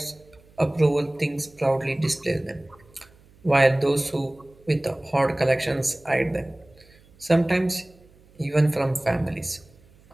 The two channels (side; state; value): right; noise; hum, 28 dB below the sound